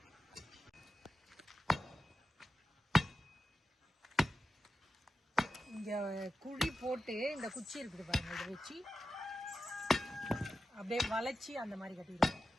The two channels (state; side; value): normal; both; correlation 0.92